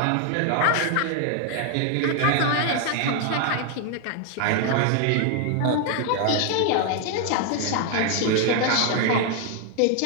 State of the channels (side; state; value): both; different; correlation 0.00